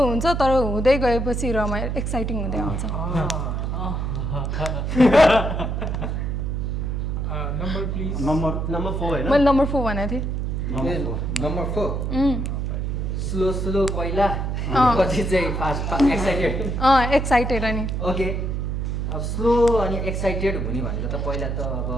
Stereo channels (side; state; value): right; noise; hum, 1 dB below the sound